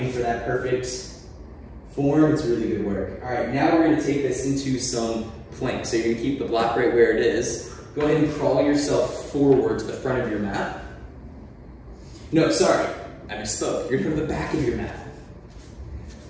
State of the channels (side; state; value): both; identical; correlation 1.00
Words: for that perfect form, it's really good work. All right, now we're going to take this into some plank. So you're going to keep the block right where it is. Go ahead and crawl yourself forward to the front of your mat. No, sorry, I misspoke. You're going to go to the back of your mat.